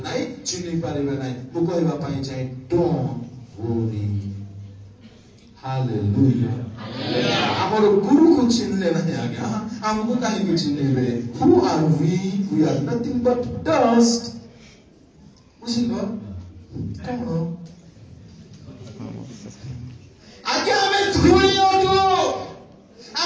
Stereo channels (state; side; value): identical; both; correlation 1.00